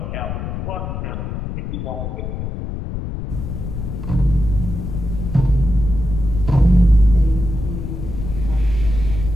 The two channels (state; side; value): noise; left; rumble, 5 dB below the sound